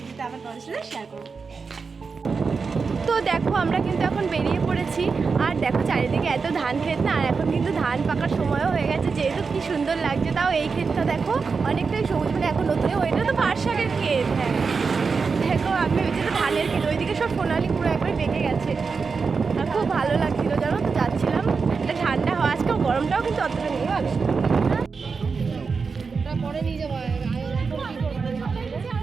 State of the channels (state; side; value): quieter; left; 5.0 dB